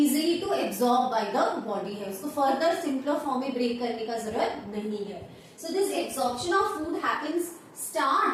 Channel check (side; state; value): both; identical; correlation 1.00